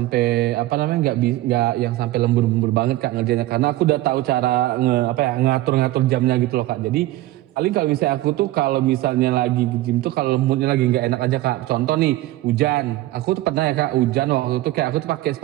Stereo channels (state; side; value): quieter; left; 16.6 dB